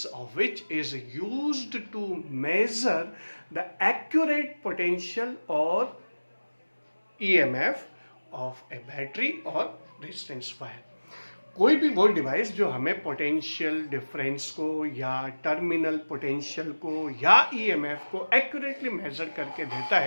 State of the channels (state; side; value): inverted; both; correlation -1.00